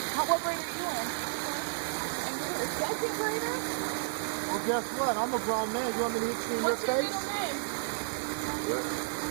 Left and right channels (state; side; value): silent; left; digital silence